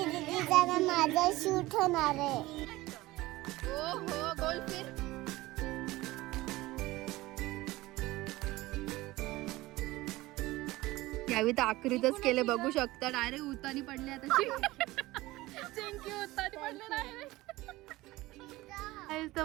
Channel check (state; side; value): quieter; left; 18.9 dB